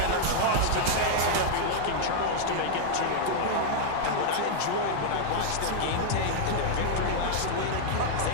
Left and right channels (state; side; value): different; both; correlation -0.01